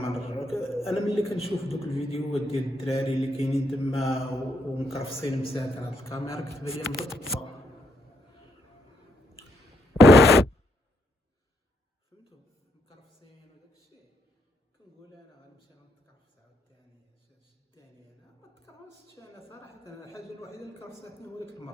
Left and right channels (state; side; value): normal; both; correlation 0.76